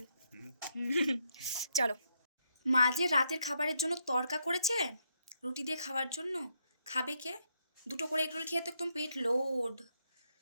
চলো মা যে রাতের খাবারের জন্য তড়কা করেছে রুটি দিয়ে খাওয়ার জন্য, খাবে কে? দুটো করে এগরোল খেয়ে তো একদম পেট লোড,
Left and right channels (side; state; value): both; inverted; correlation -0.78